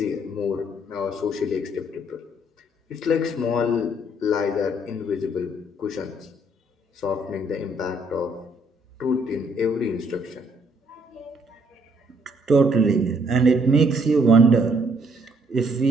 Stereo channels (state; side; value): normal; both; correlation 0.67